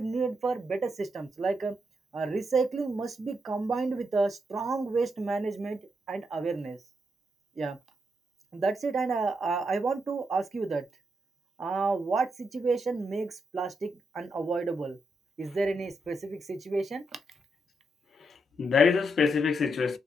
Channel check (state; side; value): normal; both; correlation 0.81